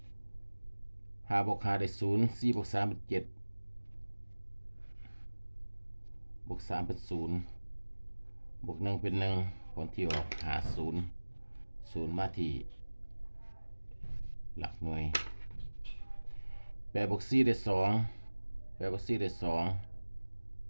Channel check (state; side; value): inverted; both; correlation -1.00